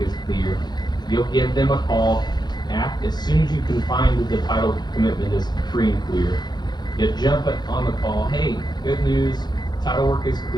clear. You'll give them a call as soon as you can find that the title commitment is free and clear. You jump on the call, hey, good news, title work is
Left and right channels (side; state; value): right; late; 0.21 ms